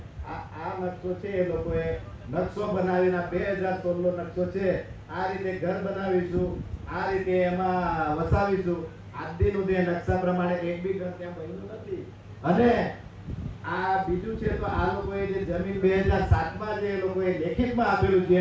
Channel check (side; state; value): both; identical; correlation 1.00